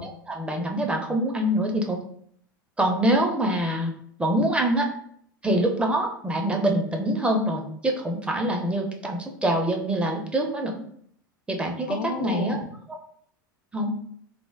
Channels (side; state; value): both; normal; correlation 0.40